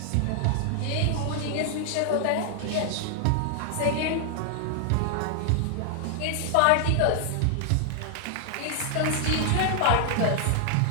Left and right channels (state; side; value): different; both; correlation 0.00